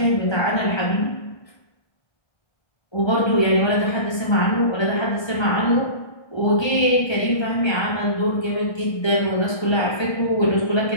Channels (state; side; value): late; right; 1.3 ms